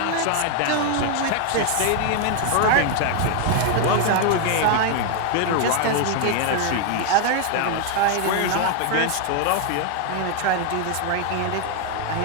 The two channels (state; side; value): different; both; correlation 0.00